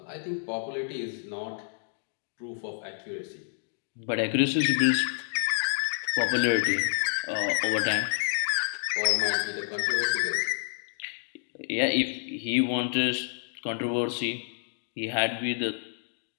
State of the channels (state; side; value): silent; right; digital silence